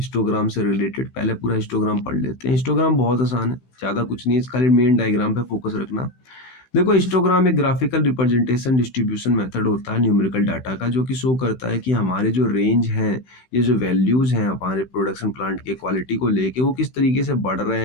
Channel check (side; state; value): right; late; 16 ms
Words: से रिलेटेड। पहले पूरा हिस्टोग्राम पढ़ लेते हैं। हिस्टोग्राम बहुत आसान है, ज्यादा कुछ नहीं है, खाली मेन डायग्राम पे फोकस रखना। देखो हिस्टोग्राम एक ग्राफिकल रिप्रेजेंटेशन डिस्ट्रीब्यूशन मेथड होता है न्यूमेरिकल डाटा का, जो कि शो करता है कि हमारे जो रेंज हैं, ये जो वैल्यूज हैं हमारे प्रोडक्शन प्लांट के क्वालिटी को लेके, वो किस तरीके से बढ़ रहे